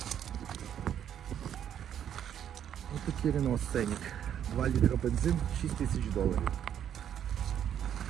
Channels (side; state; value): left; quieter; 9.6 dB